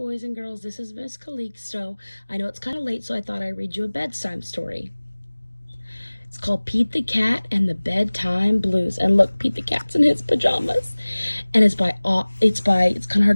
and girls. This is Miss Calixto. I know it's kind of late, so I thought I'd read you a bedtime story. It's called Pete the Cat and the Bedtime Blues. And look, Pete the Cat's in his pajamas. And it's kind of hard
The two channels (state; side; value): inverted; both; correlation -1.00